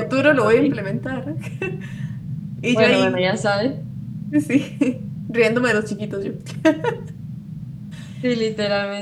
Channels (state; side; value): identical; both; correlation 1.00